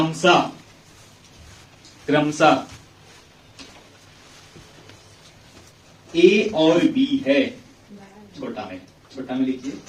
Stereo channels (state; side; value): identical; both; correlation 1.00